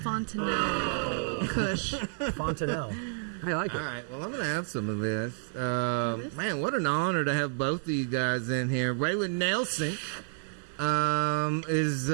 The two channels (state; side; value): silent; left; 58 dB below the other